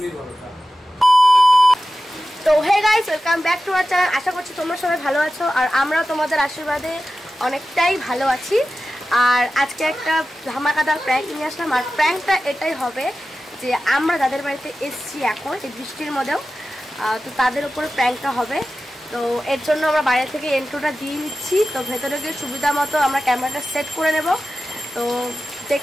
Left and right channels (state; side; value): normal; both; correlation 0.94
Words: বলো। তো hey guys, welcome back to our channel. আশা করছি তোমরা সবাই ভালো আছো আর আমরাও তোমাদের আশীর্বাদে অনেকটাই ভালো আছি। আর আজকে একটা ধামাকাদার প্র্যাঙ্ক নিয়ে আসলাম। আর প্র্যাঙ্কটা এটাই হবে যে আমরা যাদের বাড়িতে এসছি এখন এই বৃষ্টির মধ্যেও, তো তাদের উপরে প্র্যাঙ্কটা হবে। তো এর জন্য আমরা বাইরে থেকে এন্ট্রোটা দিয়ে নিচ্ছি। তো ভেতরে গিয়ে সুবিধা মতো আমরা ক্যামেরাটা সেট করে নেব। তো